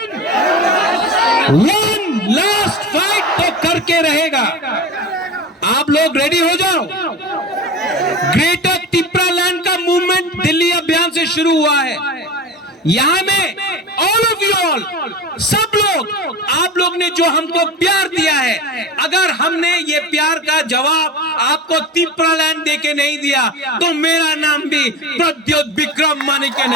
वन लास्ट फाइट तो करके रहेगा। आप लोग रेडी हो जाओ। ग्रेटर तिप्रालैंड का मूवमेंट दिल्ली अभियान से शुरू हुआ है। यहां में ऑल ऑफ यू ऑल, सब लोग, आप लोग ने जो हमको प्यार दिया है, अगर हमने ये प्यार का जवाब आपको तिप्रालैंड देके नहीं दिया तो मेरा नाम भी प्रद्योत विक्रम मानिके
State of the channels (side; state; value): both; normal; correlation 0.30